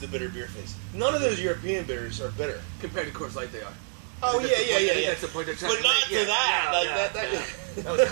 bitter beer face. None of those European beers are bitter. Compared to Coors Light, they are. Oh, yeah. That's the point they're trying but to not make. to that. That was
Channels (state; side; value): silent; left; 60 dB below the other